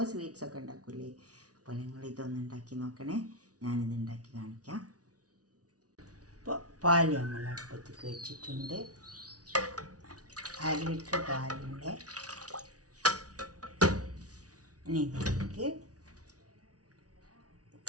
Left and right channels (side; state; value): left; late; 0.68 ms